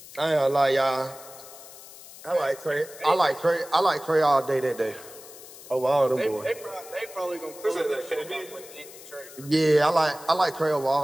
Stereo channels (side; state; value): left; noise; hiss, 17 dB below the sound